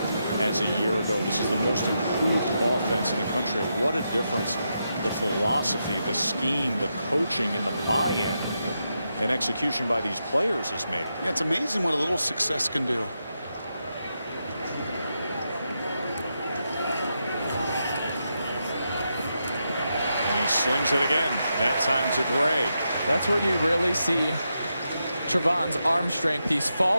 as a year ago. This is the most improved offense in the country. What a difference the philosophy, the scheme, the coaching, and the buy-in and execution by these players has made. Yeah, it's amazing what a little success can do. He slings it again, that time to Gray. That's where you really see Trevon's arm strength. He's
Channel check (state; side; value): inverted; both; correlation -0.85